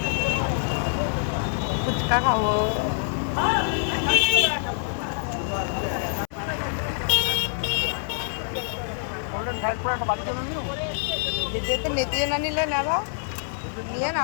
ফুচকা খাবো। যেতে নেতিয়ে না নিলে নেবা, নিয়ে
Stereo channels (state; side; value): silent; right; 61 dB below the other